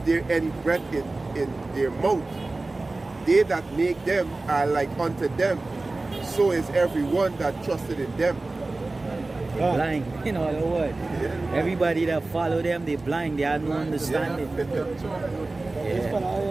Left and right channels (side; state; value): left; quieter; 3.2 dB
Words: any breath in their mouth. They that make them are like unto them. So is everyone that trusted in them. Blind, in other words. Everybody that follow them, they blind, they have no understanding. This